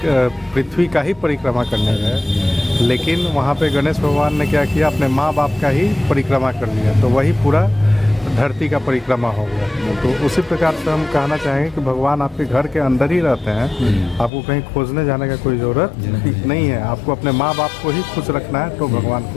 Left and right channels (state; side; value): drops out; right; at 14.3 s